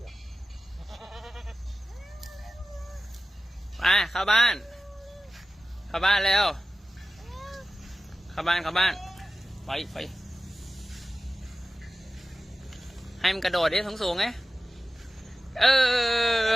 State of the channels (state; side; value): normal; both; correlation 0.95